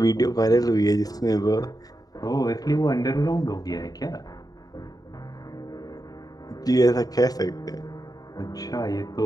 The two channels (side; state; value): right; late; 0.18 ms